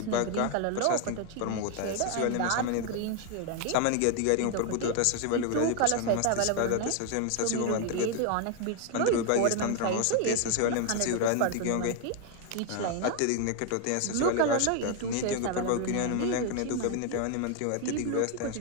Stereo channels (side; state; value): both; different; correlation 0.01